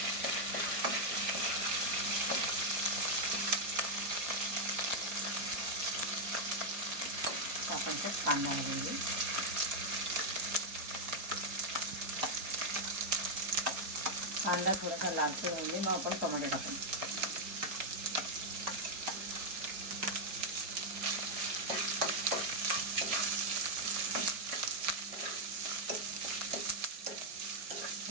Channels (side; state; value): left; late; 5.0 ms